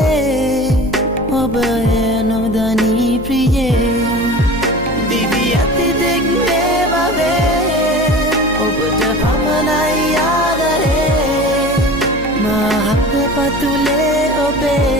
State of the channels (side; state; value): left; noise; hum, 13 dB below the sound